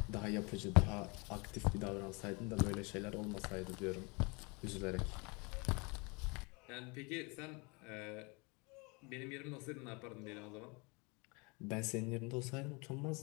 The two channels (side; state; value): right; quieter; 29.3 dB